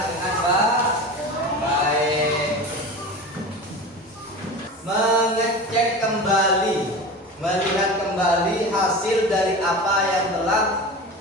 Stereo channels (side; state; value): both; normal; correlation 0.31